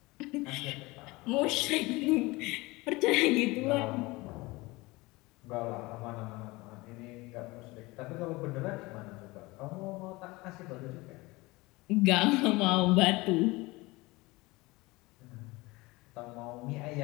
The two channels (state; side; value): quieter; right; 22.4 dB